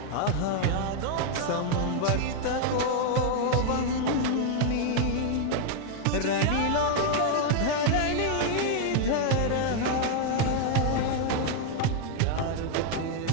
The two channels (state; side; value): different; both; correlation 0.00